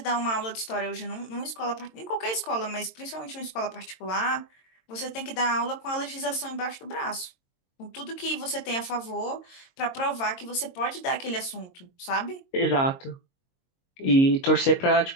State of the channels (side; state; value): right; late; 22 ms